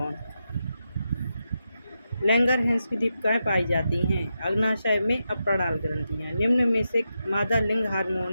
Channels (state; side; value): inverted; both; correlation -0.87